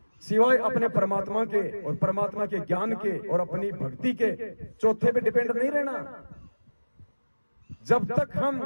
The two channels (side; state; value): both; inverted; correlation -1.00